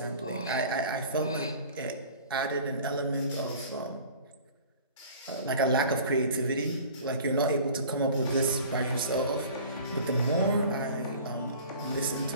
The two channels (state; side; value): inverted; both; correlation -0.44